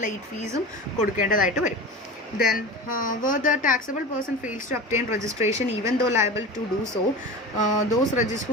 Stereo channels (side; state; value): both; normal; correlation 0.31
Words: ലേറ്റ് ഫീസും കൊടുക്കേണ്ടതായിട്ട് വരും. Then where the taxable person fails to obtain registration even though liable to do so, those